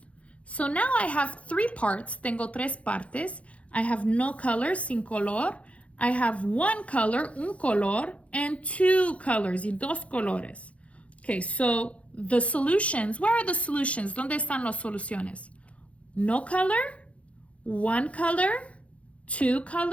So now I have 3 parts, tengo 3 partes. I have no color, sin color. I have 1 color, un color, and 2 colors, y 2 colores. Okay, so the solutions, where are the solutions? ¿Dónde están las soluciones? No color, 1 color, 2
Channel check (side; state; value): right; late; 0.063 ms